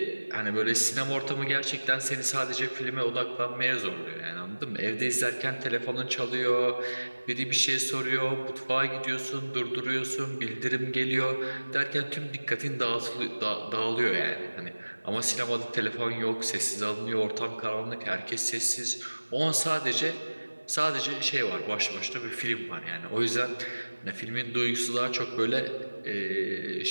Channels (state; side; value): inverted; both; correlation -1.00